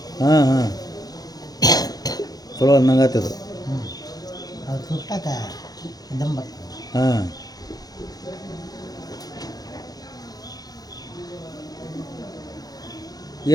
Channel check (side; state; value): right; late; 0.19 ms